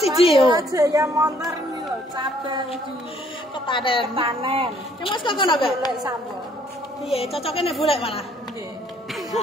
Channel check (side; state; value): both; normal; correlation 0.63